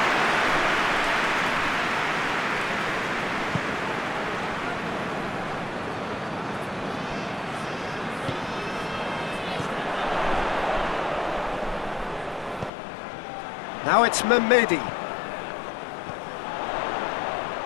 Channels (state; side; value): drops out; right; at 12.7 s